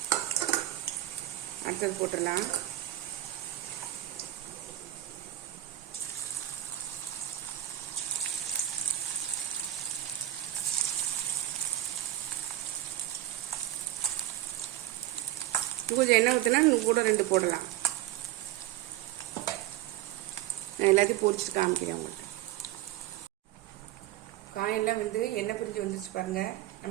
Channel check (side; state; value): left; quieter; 14.1 dB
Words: அடுத்தது போட்டுடலாம். கொஞ்சம் எண்ணெய் ஊற்றினா இன்னும் கூட 2 போடலாம். நான் எல்லாத்தையும் பொரிச்சிட்டு காமிக்கிறேன் உங்களுக்கு. காயெல்லாம் வந்து எண்ணெய் பிரிஞ்சு வந்துருச்சு பாருங்க.